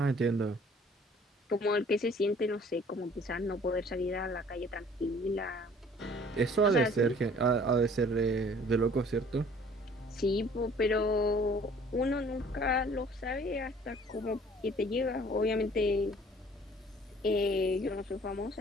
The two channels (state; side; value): normal; both; correlation 0.54